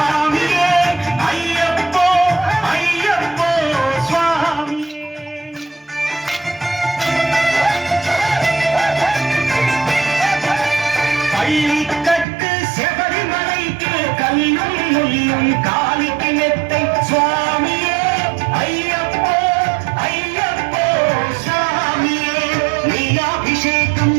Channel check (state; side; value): drops out; left; at 12.2 s